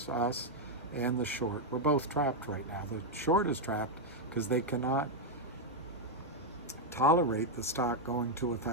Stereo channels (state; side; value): normal; both; correlation 0.01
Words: us, and the short. We're both trapped right now. The short is trapped because they cannot tolerate the stock going to